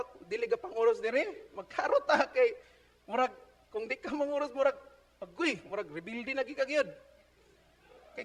dili ga panguros dire. Magkaro ta kay murag kung di ka manguros murag agoy, murag rebuilding lagi ka gyud. Kay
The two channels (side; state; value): both; identical; correlation 1.00